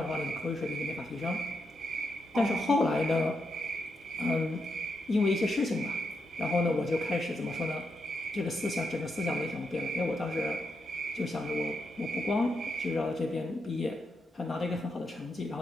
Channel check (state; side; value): normal; both; correlation 0.83